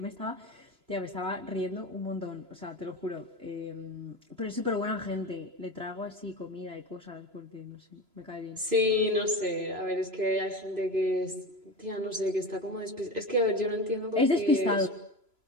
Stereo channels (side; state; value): left; late; 3.0 ms